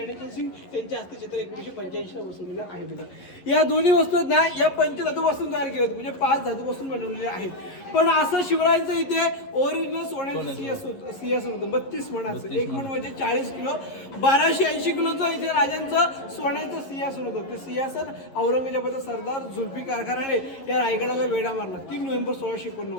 सिंग यांच्या हस्ते चत्र 1985ला बसवलेलं आहे बघा। या दोन्ही वस्तू ना या पंचधातूपासून तयार केल्या होत्या, म्हणजे 5 धातूपासून बनवलेल्या आहेत। पण असं शिवरायांचं इथे ओरिजिनल सोन्याचं सिंहासन होतं 32 मणाचं, एक मण म्हणजे 40 किलो, 1280 किलोचं इथे राजांचं सोन्याचं सिंहासन होतं। ते सिंहासन औरंगजेबाचा सरदार जुल्फिकार खानाने या रायगडाला वेढा मारला 3 नोव्हेंबर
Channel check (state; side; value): late; right; 11 ms